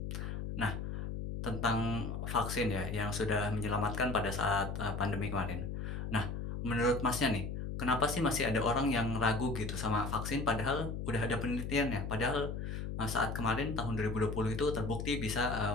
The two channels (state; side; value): noise; left; hum, 4 dB below the sound